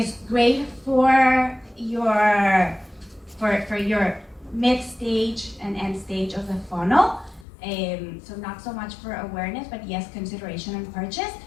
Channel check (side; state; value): right; drops out; at 7.5 s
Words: great for your mid-stage and end stage of the funnel. So not so much for awareness, but yes, consideration and purchase.